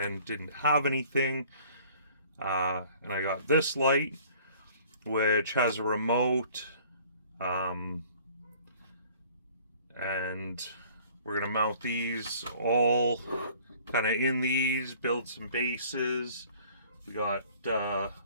didn't have anything. And I got this light, which has a remote, and we're gonna mount these all kind of in these, build some bases. We got a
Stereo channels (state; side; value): inverted; both; correlation -0.53